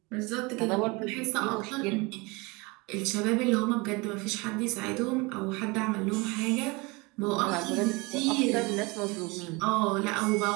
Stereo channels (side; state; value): left; quieter; 26.1 dB